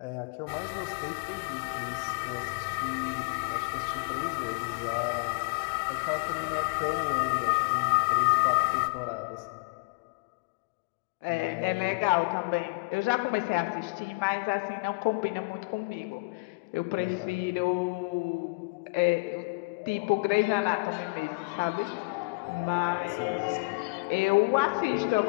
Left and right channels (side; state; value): right; quieter; 30.4 dB